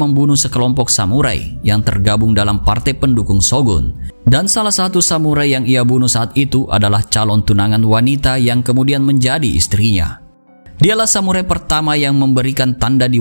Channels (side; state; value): both; inverted; correlation -1.00